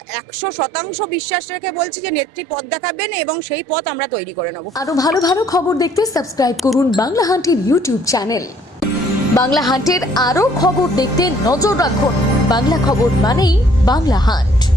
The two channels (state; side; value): normal; both; correlation 0.61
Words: 100% বিশ্বাস রেখে বলছি যে নেত্রী পথ দেখাবেন, এবং সেই পথ আমরা তৈরি করে নেব। আরো ভালো ভালো খবর দেখতে সাবস্ক্রাইব করুন বাংলা হান্টের ইউটিউব চ্যানেল। বাংলা হান্টের আরো খবর দেখতে নজর রাখুন। বাংলা খবর মানেই বাংলা হান্ট।